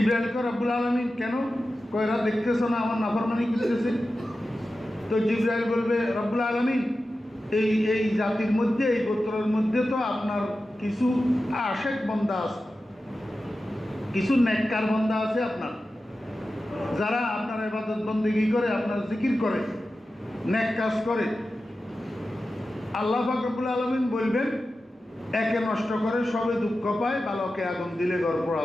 রব্বুল আলামিন কেন কয়রা দেখতেছ না আমার নাফরমানি করতেছে? তো জিবরাইল বলবে, রব্বুল আলামিন এই জাতির মধ্যে, এই গোত্রের মধ্যে তো আপনার কিছু আশেক বান্দা আছে, কিছু নেককার বান্দা আছে আপনার, যারা আপনার ইবাদত বন্দেগী করে, আপনার জিকির করে, নেক কাজ করে। আল্লাহ পাক রব্বুল আলামিন বলবেন, একে নষ্ট করে সবে দুঃখ পায়, বালকে আগুন দিলে ঘর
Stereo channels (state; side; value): normal; both; correlation 0.93